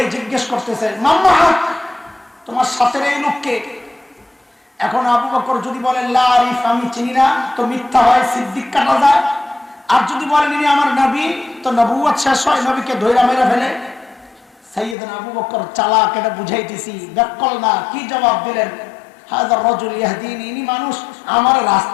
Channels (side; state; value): right; drops out; at 15.0 s